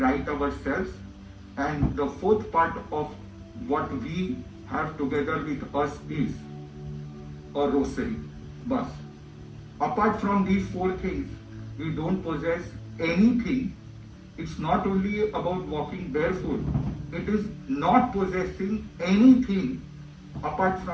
ourselves. And the fourth part of what we have together with us is a rosary. Bus. Apart from these four things, we don't possess anything. It's not only about walking barefoot, it is not possessing anything apart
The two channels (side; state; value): both; identical; correlation 1.00